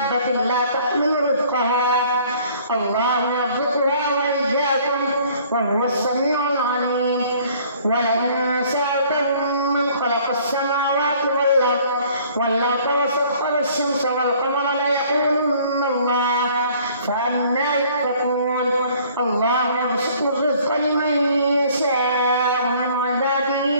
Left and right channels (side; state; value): both; inverted; correlation -0.56